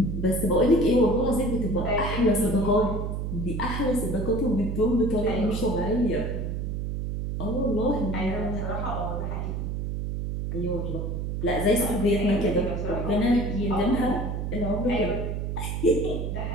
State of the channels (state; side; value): noise; right; hum, 3 dB below the sound